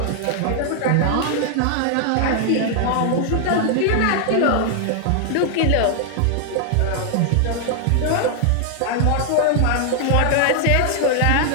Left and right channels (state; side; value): different; both; correlation 0.00